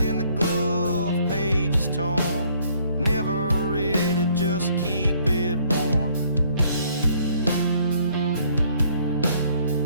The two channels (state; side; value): inverted; both; correlation -0.63